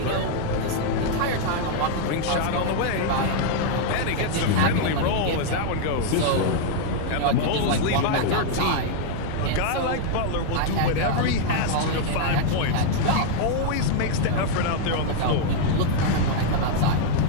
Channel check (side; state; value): both; different; correlation 0.00